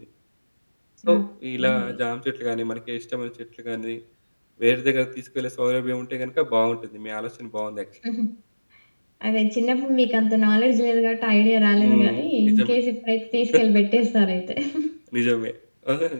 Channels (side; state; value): both; inverted; correlation -1.00